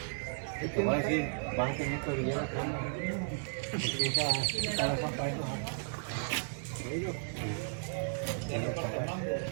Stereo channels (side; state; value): left; silent; digital silence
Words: Te voy a decir, vas a tener que brillar la cámara. Porque esa la zapa ahí, ¿no?